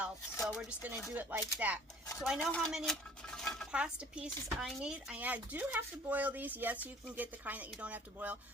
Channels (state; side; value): normal; both; correlation 0.52